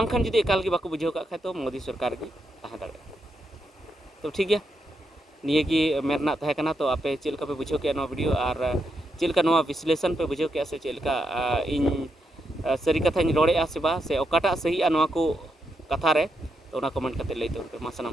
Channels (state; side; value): normal; both; correlation 0.82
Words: जुदी एकाल गे बाको बुझेव का तो मोदी सरकार गे तहे दाड़े तो ठीक गया निये की मेरना तहे कना तो आपे चेलका पे बुझेव के नो वीडियो और चेलका नो विश्लेषण पे बुझेव के से चेलका इन सरी कथा रोड़े से बा से ओकाटा सही नो को कथा रे तो कमेंट करते लैते मा